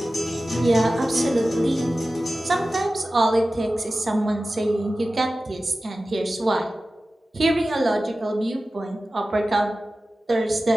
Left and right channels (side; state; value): both; normal; correlation 0.95